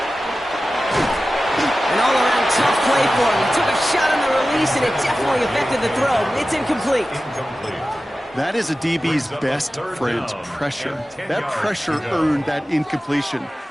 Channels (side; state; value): both; normal; correlation 0.95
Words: An all-around tough play for him. He took a shot on the release, and it definitely affected the throw. It's incomplete. That is a DB's best friend, pressure. That pressure earned that incompletion.